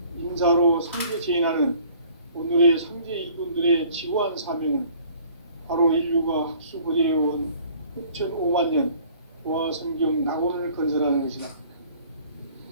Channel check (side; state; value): both; inverted; correlation -0.54